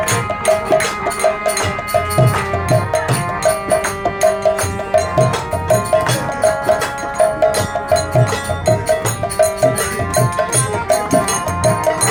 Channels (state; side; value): noise; right; hum, 22 dB below the sound